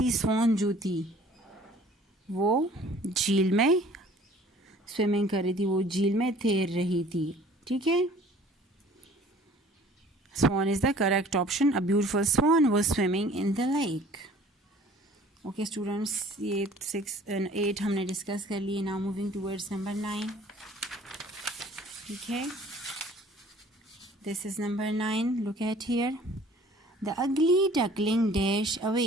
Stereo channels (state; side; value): normal; both; correlation 0.51